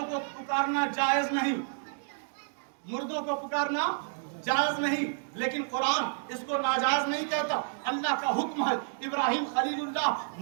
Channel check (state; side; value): silent; left; digital silence